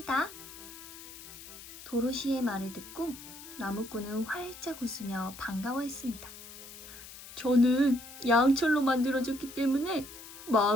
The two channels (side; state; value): left; noise; hiss, 15 dB below the sound